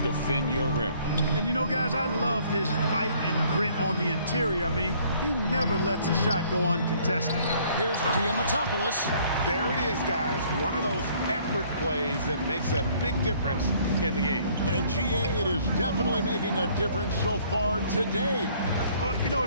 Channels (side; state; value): both; inverted; correlation -0.60